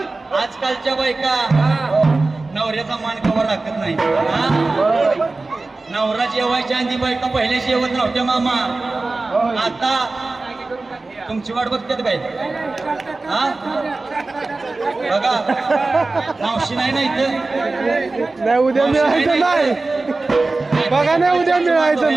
आजकालच्या बायका नवऱ्याचा मान कवर राखत नाही नवरा जेवायच्या आधी बायका पहिल्या जेवत नव्हत्या मामा आता तुमची वाट बघतात काय हा बघा मावशी नाही ना इथं नाही उद्या मिळायचं नाही बघा नाही उद्या मिळायचं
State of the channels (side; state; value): left; quieter; 3.4 dB